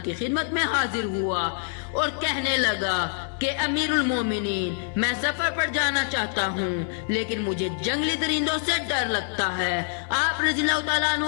की खिदमत में हाजिर हुआ और कहने लगा कि अमीरुल मोमिनीन, मैं सफर पर जाना चाहता हूँ, लेकिन मुझे जंगली दरिंदों से डर लगता है। आप रज़ियल्लाहु ताला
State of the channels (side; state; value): right; silent; 61 dB below the other